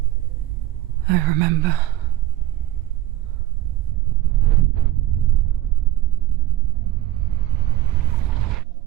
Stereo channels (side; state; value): left; quieter; 14.9 dB